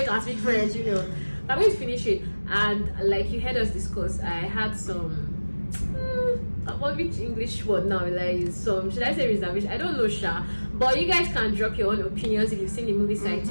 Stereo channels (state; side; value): inverted; both; correlation -1.00